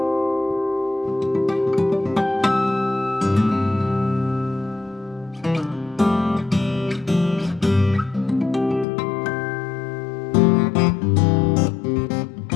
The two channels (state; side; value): drops out; right; at 8.8 s